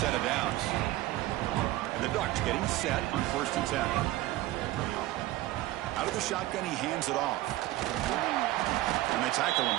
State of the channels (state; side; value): quieter; left; 16.6 dB